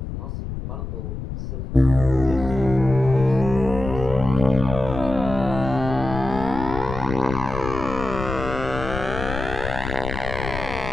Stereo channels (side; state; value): left; noise; rumble, 7 dB below the sound